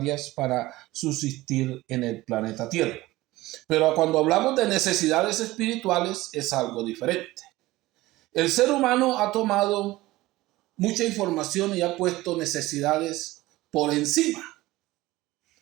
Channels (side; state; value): left; quieter; 18.3 dB